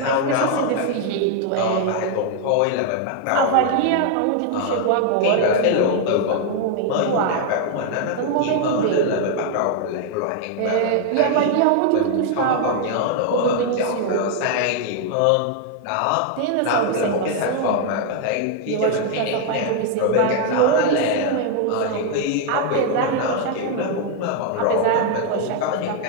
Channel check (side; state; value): both; different; correlation 0.00